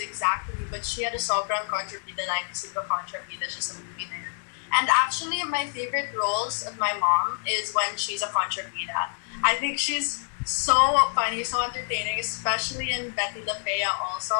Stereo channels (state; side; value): silent; right; 60 dB below the other